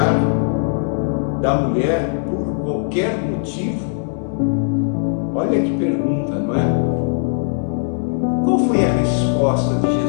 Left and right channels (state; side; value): silent; right; digital silence